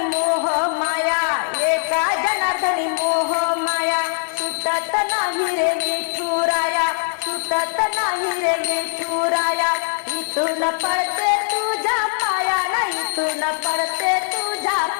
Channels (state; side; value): silent; right; digital silence